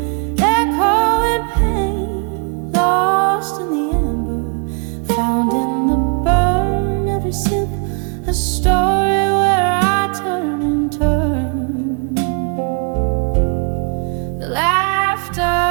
echoing pain, lost in the amber, found in the burn, every sip a story where I turn and turn. The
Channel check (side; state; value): left; quieter; 37.5 dB